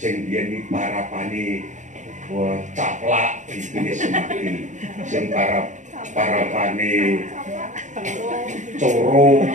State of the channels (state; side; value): late; left; 0.35 ms